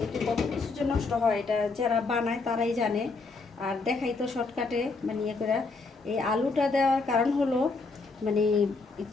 এতে কত কিছু যে নষ্ট হয় এটা যারা বানায় তারাই জানে। আর দেখাই তো শর্টকাটে মানে ইয়ে করে। এই আলুটা দেওয়ার কারণ হলো মানে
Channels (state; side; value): quieter; right; 4.0 dB